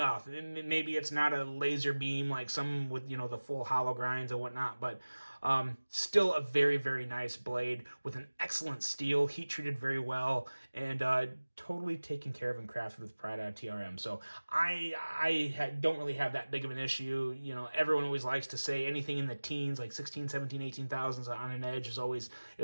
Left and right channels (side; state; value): both; inverted; correlation -1.00